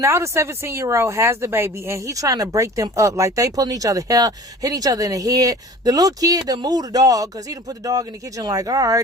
the 17-year-old has the baby and he trying to break them up. Like they pulling each other hair, hitting each other in the head. The little kid done moved the dog because he done put the dog in the kitchen like, all right,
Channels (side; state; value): both; normal; correlation 0.43